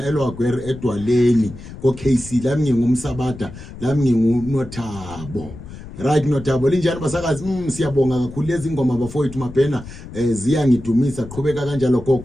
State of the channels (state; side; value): noise; left; rumble, 14 dB below the sound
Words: eLwagwere edwaleni ko KC lami ngingumsabada lami nginguNothabo right Nothabo linjani basakazi siyabonga kakhulu lezi ingoma bafowethu Mabhena ziyangidumisa qhubeka kanjalo